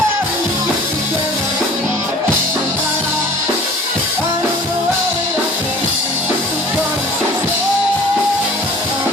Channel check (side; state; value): both; normal; correlation 0.46